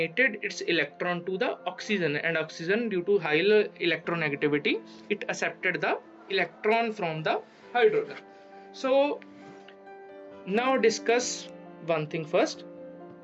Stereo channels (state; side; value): identical; both; correlation 1.00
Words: its electron to the oxygen, and oxygen, due to high electronegativity, it accepted the electron from the hydrogen. So now discuss one thing first.